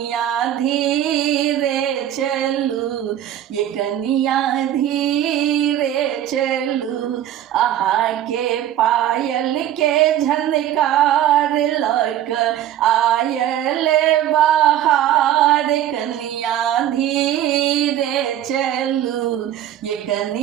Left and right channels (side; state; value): left; quieter; 11.6 dB